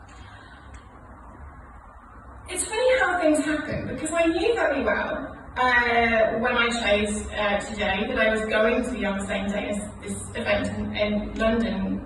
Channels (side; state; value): both; identical; correlation 1.00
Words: It's funny how things happen, because I knew very well when I chose today that I was going to be on the same day as this event in London,